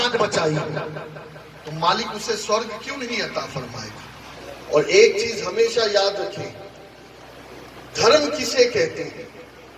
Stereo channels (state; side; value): identical; both; correlation 1.00